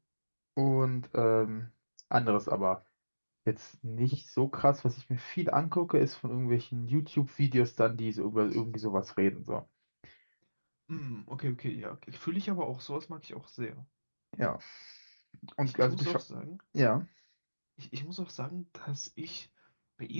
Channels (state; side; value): inverted; both; correlation -1.00